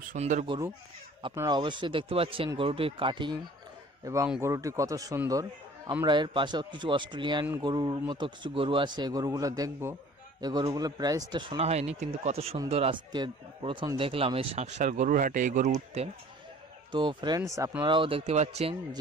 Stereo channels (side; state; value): both; normal; correlation 0.49